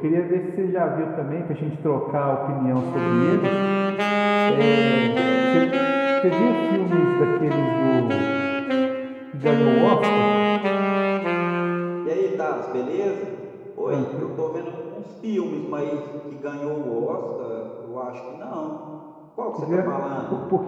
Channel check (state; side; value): identical; both; correlation 1.00